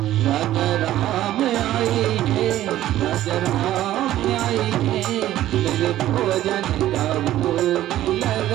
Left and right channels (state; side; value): quieter; left; 13.6 dB